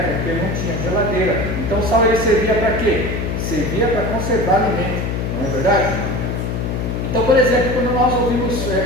porque não tinha geladeira, então o sal ele servia para quê? Servia para conservar alimento, não é verdade? Então, por exemplo, quando nós ouvimos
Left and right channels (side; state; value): left; noise; hum, 2 dB below the sound